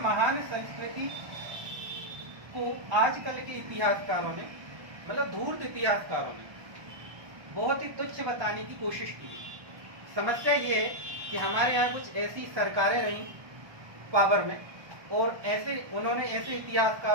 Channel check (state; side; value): late; left; 1.2 ms